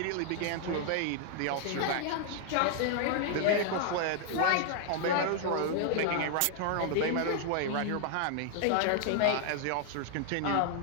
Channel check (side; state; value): both; different; correlation -0.01